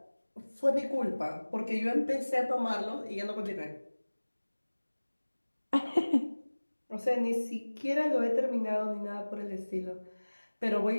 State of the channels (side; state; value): both; inverted; correlation -1.00